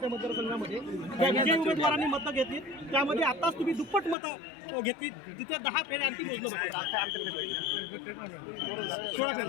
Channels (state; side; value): drops out; right; at 4.2 s